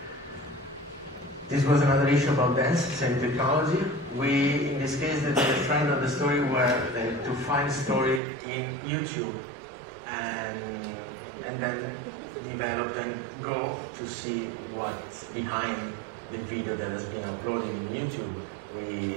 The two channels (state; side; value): drops out; left; at 8.2 s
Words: This was another issue about dance, same technology. We, in this case, the trend of the story were to find story in YouTube and then develop and go to see what's behind the video that has been uploaded in YouTube.